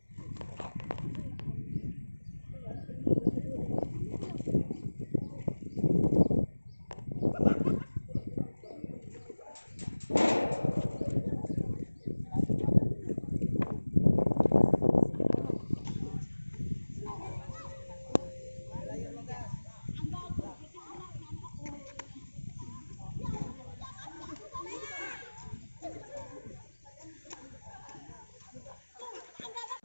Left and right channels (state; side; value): inverted; both; correlation -1.00